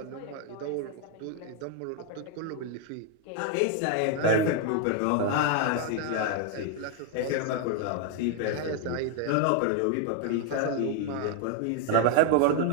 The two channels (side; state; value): both; different; correlation 0.01